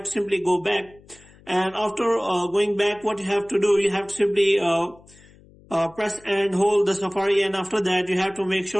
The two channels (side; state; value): left; noise; hum, 26 dB below the sound